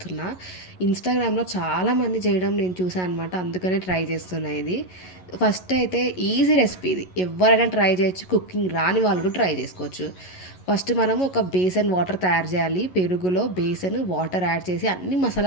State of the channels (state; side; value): late; right; 11 ms